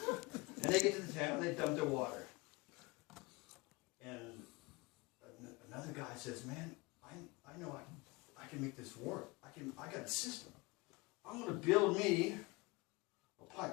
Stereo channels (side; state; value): right; quieter; 24.0 dB